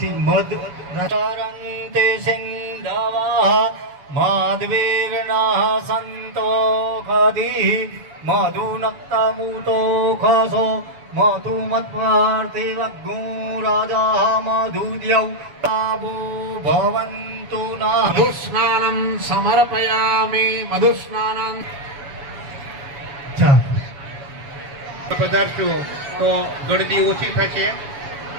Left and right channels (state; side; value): late; left; 7.1 ms